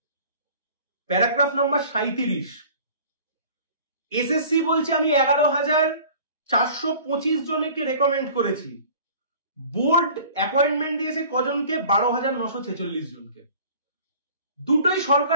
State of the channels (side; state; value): both; inverted; correlation -0.47